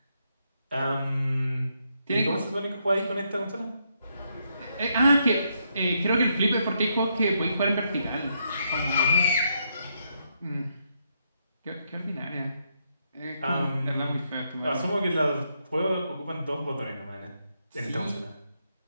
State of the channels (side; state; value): both; inverted; correlation -0.78